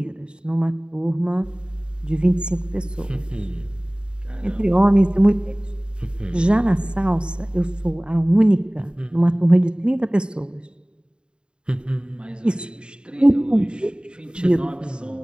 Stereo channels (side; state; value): left; late; 0.051 ms